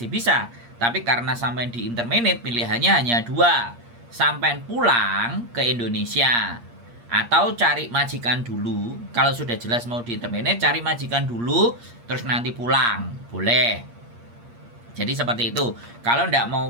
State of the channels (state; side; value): late; left; 8.5 ms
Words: bisa. Tapi karena sampai di interminate, pilihannya hanya dua. Sampai pulang ke Indonesia. Atau cari majikan dulu. Kalau sudah jelas mau di interminate, cari majikan dulu, terus nanti pulang. Boleh. Jadi seperti itu. Kalau nggak